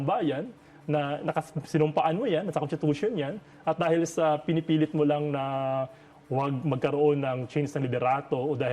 bayan na sinumpaan mo yan, sa constitution yan, at dahil sa pinipilit mo lang na huwag magkaroon ng change ng liderato o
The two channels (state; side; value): identical; both; correlation 1.00